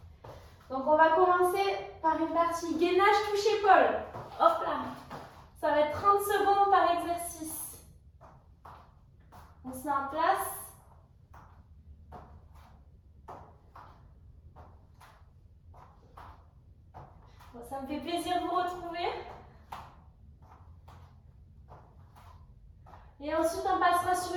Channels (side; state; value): both; identical; correlation 1.00